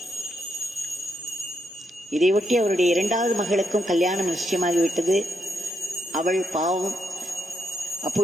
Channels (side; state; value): both; normal; correlation 0.79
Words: இதையொட்டி அவருடைய 2வது மகளுக்கும் கல்யாணம் நிச்சயமாகிவிட்டது. அவள் பாவம்